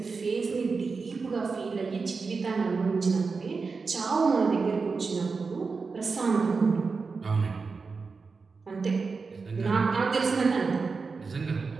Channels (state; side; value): quieter; left; 4.6 dB